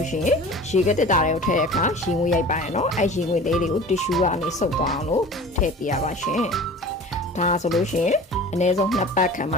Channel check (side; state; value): both; normal; correlation 0.40